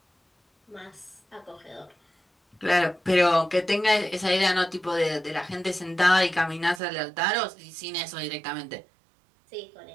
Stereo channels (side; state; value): left; drops out; at 6.8 s